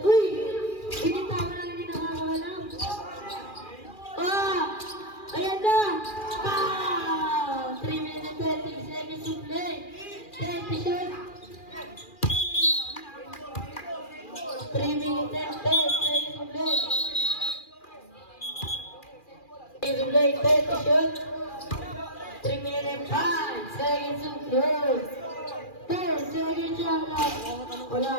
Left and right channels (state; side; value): late; right; 2.4 ms